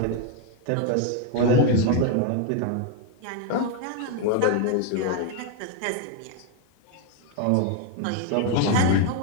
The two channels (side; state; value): both; different; correlation 0.01